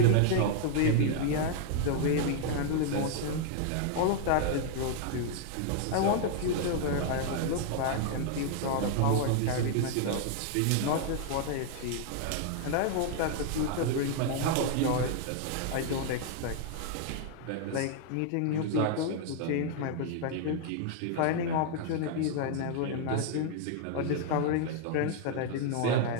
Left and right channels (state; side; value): different; both; correlation 0.00